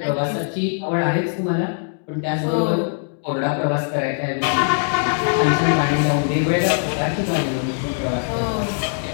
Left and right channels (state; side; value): silent; right; digital silence